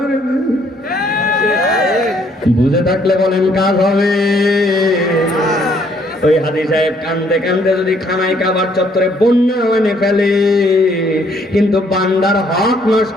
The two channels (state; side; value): normal; both; correlation 0.66